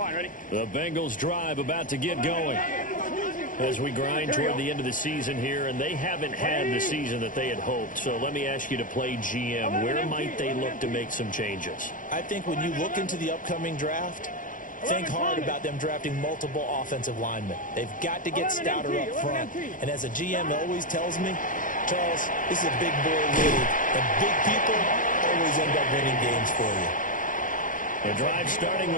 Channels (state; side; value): late; right; 0.38 ms